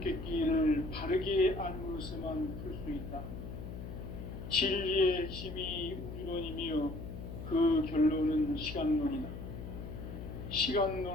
바르게 알므로서만 풀 수 있다. 진리의 핵심이 우주론이며 그 결론은 시간론이다.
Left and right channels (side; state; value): left; noise; hum, 9 dB below the sound